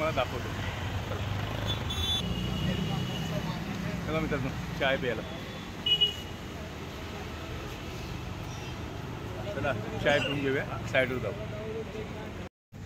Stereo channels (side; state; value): both; identical; correlation 1.00